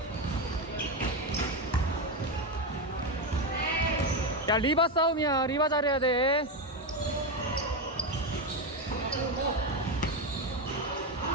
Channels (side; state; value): both; normal; correlation 0.11